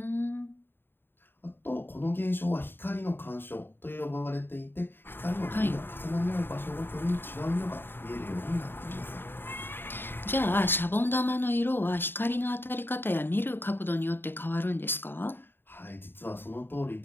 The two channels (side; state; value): right; late; 0.10 ms